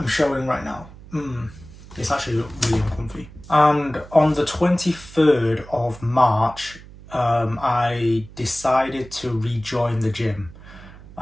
showing right now. It's actually really uncomfy. And on the 23rd of March, I decided to rejoin the gym,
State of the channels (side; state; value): right; noise; hum, 19 dB below the sound